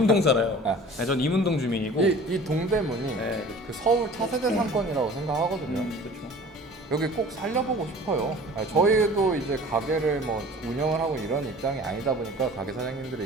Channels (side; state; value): both; normal; correlation 0.44